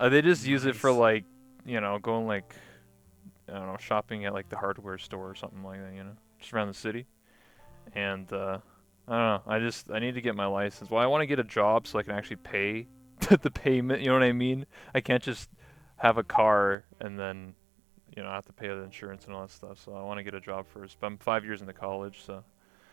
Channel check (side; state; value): left; drops out; at 16.8 s